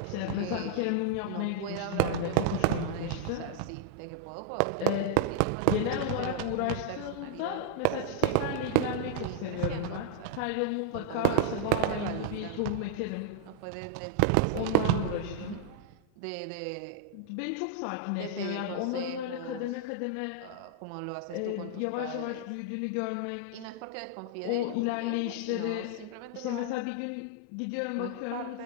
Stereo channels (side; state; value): both; different; correlation -0.01